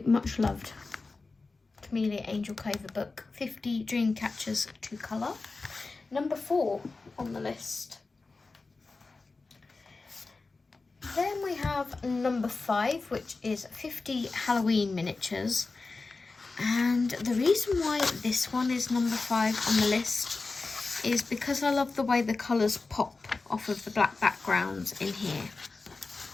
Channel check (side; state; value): right; quieter; 3.8 dB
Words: much loved Kameliya Angelkova book, 50 Dream Catchers to Colour. Number 4 on the list. Then we have number 5, which is 50 Halloween Miniatures. And the reason why this one is number 5 on the list is because I love the way the colours pop off of the black backgrounds in here.